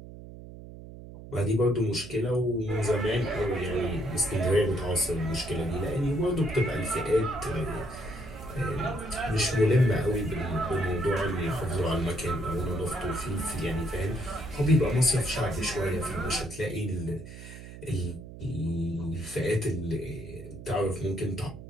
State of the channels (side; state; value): right; noise; hum, 14 dB below the sound